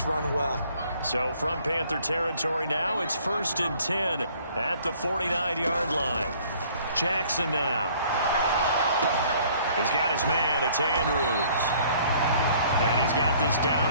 run well. So from Panther territory now, it's 1st and 10 at the 49-yard line. Jackson now. He's got his man, it's Andrews. And he's got this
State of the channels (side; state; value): both; inverted; correlation -0.57